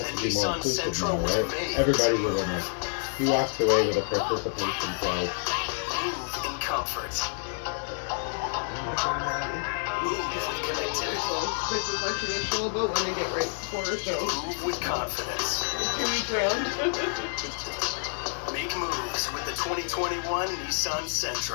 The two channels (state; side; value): silent; right; 59 dB below the other